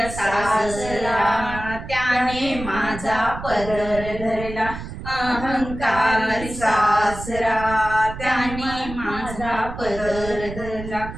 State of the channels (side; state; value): right; noise; rumble, 10 dB below the sound